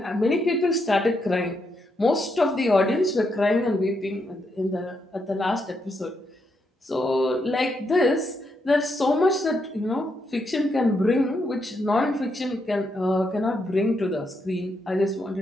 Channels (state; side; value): normal; both; correlation 0.80